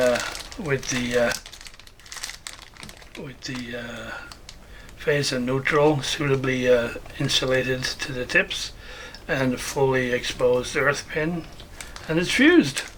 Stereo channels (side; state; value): both; identical; correlation 1.00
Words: with the phase and neutral suitably insulated to the tips, and a fully exposed earth pin, and it's fused.